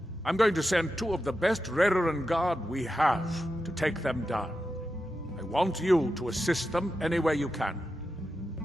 I'm going to send 2 of the best Rerenn Guard we have to take them down. I want you to assist them any way you can.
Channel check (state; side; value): normal; both; correlation 0.89